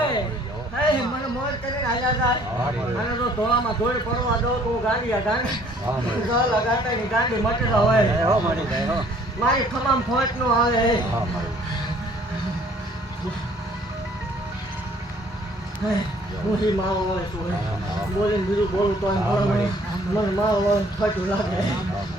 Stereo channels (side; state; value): both; normal; correlation 0.58